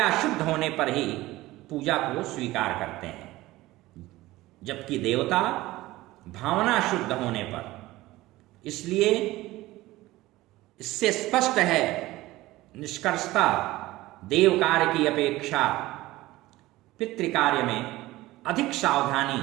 शुद्ध होने पर ही पूजा को स्वीकार करते हैं, जबकि देवता भावना शुद्ध होने पर। इसलिए इससे स्पष्ट है निष्कर्षता देव कार्य की अपेक्षा पितृकार्य में अधिक सावधानी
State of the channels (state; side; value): quieter; left; 17.9 dB